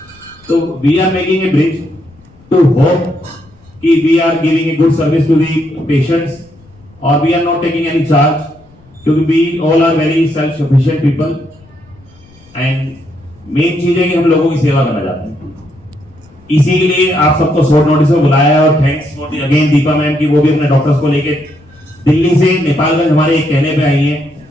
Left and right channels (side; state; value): left; noise; rumble, 27 dB below the sound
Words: तो we are making a bridge to hope कि we are giving a good service to the patients और we are not taking any charge, क्योंकि we all are very self sufficient people and main चीज है कि हम लोगों की सेवा करना चाहते हैं। इसीलिए आप सबको शॉर्ट नोटिस में बुलाया और thanks for the again Deepa ma'am की वो भी अपने डॉक्टर्स को लेके दिल्ली से नेपालगंज हमारे एक कहने पे आई हैं